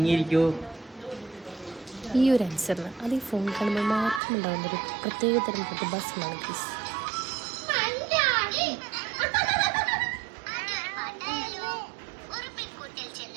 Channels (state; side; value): drops out; left; at 4.2 s